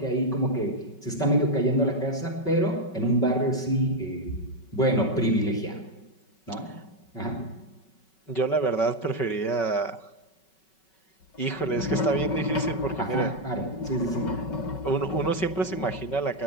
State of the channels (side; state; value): right; late; 5.3 ms